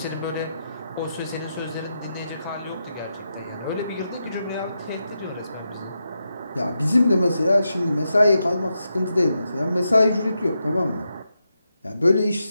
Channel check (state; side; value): inverted; both; correlation -0.86